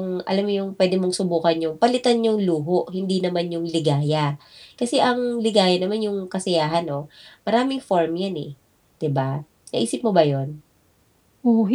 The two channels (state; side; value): identical; both; correlation 1.00